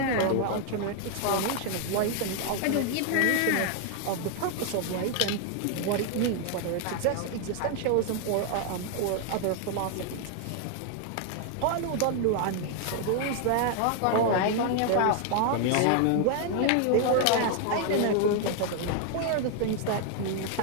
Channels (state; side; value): different; both; correlation 0.00